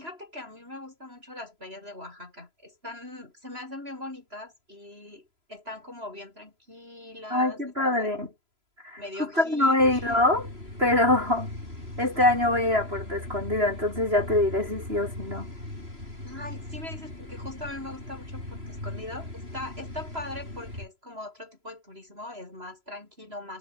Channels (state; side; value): late; left; 3.0 ms